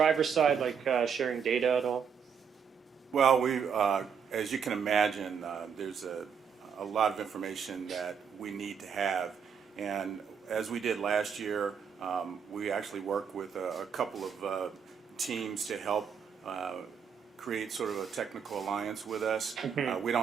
side, like sharing data at all? Well, as you can imagine, there's a lot of information that we need to have. And as we did last year, we actually worked with a couple of teams to help create sort of a technical alliance with us. We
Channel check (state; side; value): quieter; left; 6.9 dB